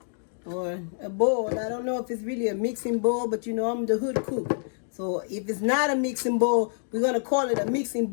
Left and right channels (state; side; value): silent; right; digital silence